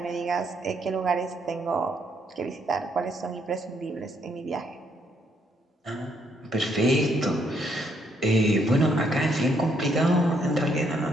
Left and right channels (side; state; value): both; normal; correlation 0.72